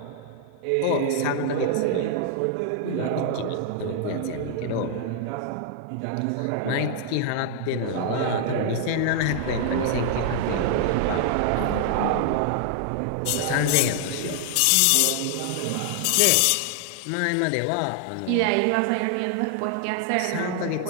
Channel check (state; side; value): different; both; correlation 0.00